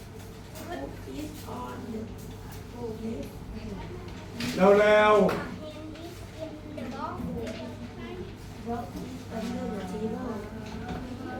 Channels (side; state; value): both; identical; correlation 1.00